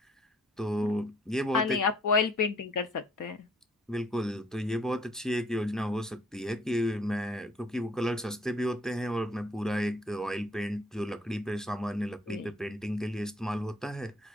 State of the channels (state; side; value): normal; both; correlation 0.61